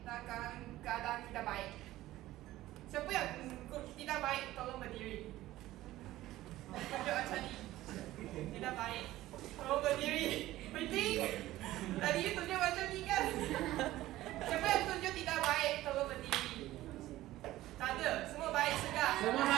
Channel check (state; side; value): quieter; left; 15.8 dB